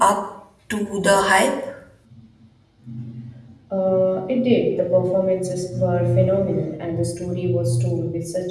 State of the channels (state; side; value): identical; both; correlation 1.00